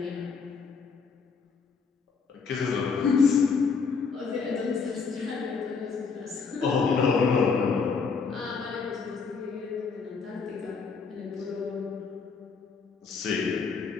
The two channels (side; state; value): right; quieter; 5.2 dB